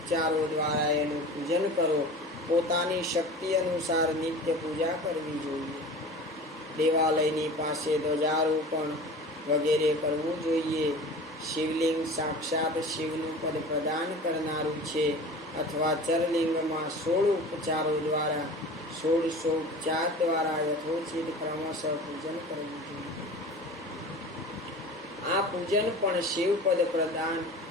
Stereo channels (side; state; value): both; normal; correlation 0.37